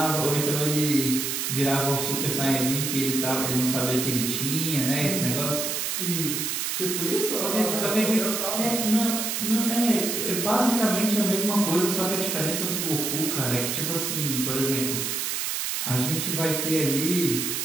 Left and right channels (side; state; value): right; noise; hiss, 1 dB below the sound